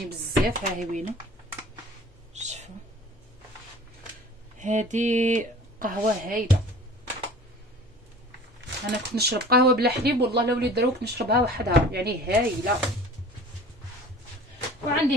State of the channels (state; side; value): normal; both; correlation 0.44